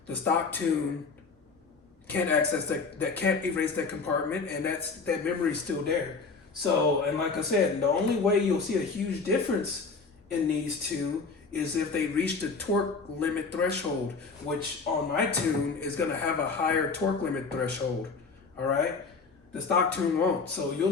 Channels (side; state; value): right; quieter; 4.5 dB